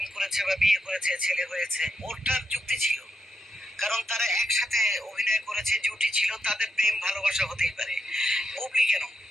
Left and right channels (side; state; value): both; normal; correlation 0.83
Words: করেছে বা বিয়ে করেছে, ছেলে হয়েছে, ওরটার যুক্তি ছিল, কারণ তারা একসাথে অভিনয় করেছে, জুটি ছিল, তাদের প্রেম ভালোবাসা হতেই পারে। বুবলি কেন,